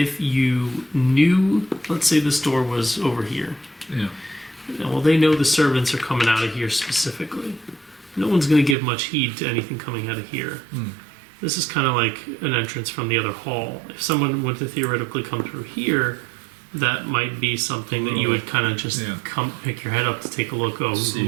you knew, let's say this door was over here. Yeah. Well, they know the servants are coming out of here specifically. No one's going to give much heed to anything coming out of here. This is kind of like an entrance from the other hall. If someone were to theoretically come through here, that might be something that you would kind of just come pick your head up to take a look. Oh,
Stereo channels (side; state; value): left; drops out; at 8.8 s